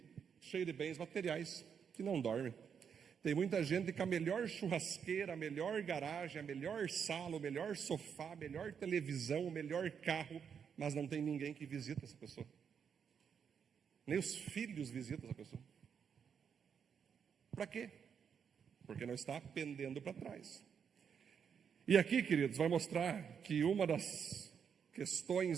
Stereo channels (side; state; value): left; quieter; 7.2 dB